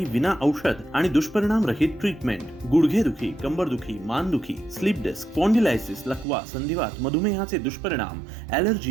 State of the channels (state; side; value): drops out; left; at 6.2 s